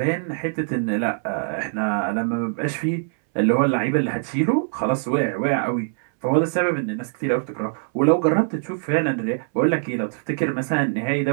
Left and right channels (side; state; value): left; silent; 64 dB below the other